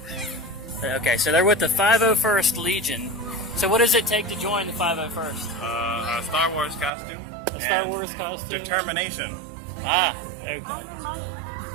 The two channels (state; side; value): drops out; left; at 6.9 s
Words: Okay, so they're with the 501st Legion. So what does it take to join the 501st? A Star Wars costume. A Star and Wars costume? Determination. Ah, okay.